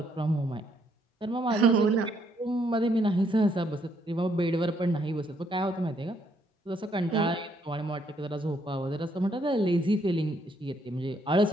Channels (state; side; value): normal; both; correlation 0.71